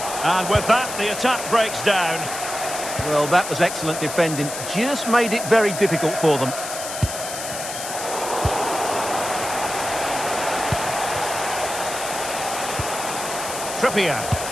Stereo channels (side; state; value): left; noise; hiss, 7 dB below the sound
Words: And with that, the attack breaks down. Well, that was excellent defending. Just made it very difficult for them. Trippier.